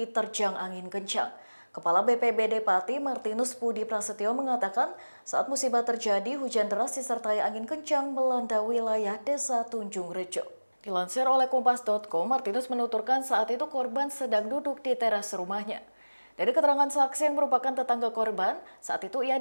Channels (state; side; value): inverted; both; correlation -1.00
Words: angin kencang. Kepala BPBD Pati, Martinus Budi Prasetyo mengatakan saat musibah terjadi, hujan deras disertai angin kencang melanda wilayah desa Tunjung Rejo. Dilansir oleh Kompas.com, Martinus menuturkan saat itu korban sedang duduk di teras rumahnya. Dari keterangan saksi yang merupakan tetangga korban, saat itu ia